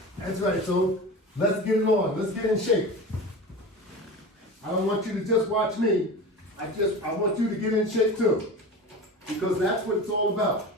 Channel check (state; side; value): normal; both; correlation 0.31